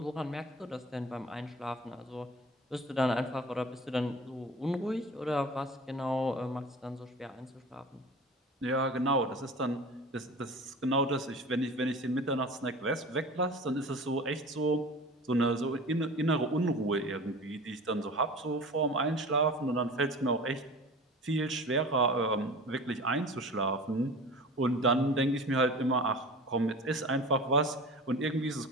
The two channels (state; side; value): normal; both; correlation 0.37